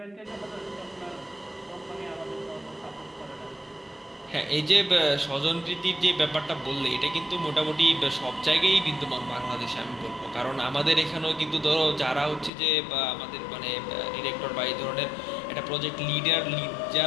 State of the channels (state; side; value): drops out; right; at 12.5 s